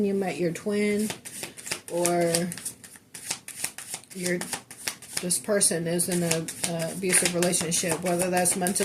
you met your twin, or this person is in an abusive relationship, whether that's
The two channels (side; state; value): both; identical; correlation 1.00